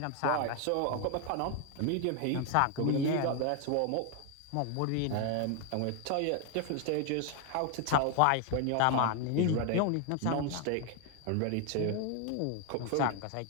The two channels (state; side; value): different; both; correlation 0.01